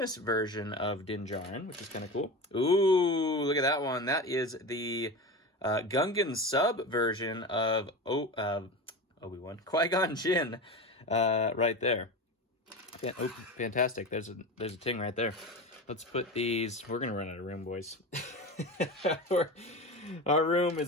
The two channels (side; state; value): both; normal; correlation 0.26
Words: version of Din Djarin, which is kind of cool. Ooh, look at that one. That is the Gungan sub version of Obi-Wan, Qui-Gon Jinn, right there. Oh, fantastic. There's a Ting right there. Let's put these... We're going to run out of room, boys. Our room